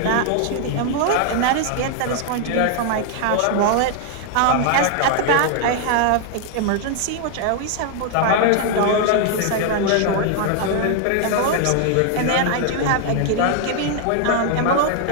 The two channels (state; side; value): different; both; correlation 0.00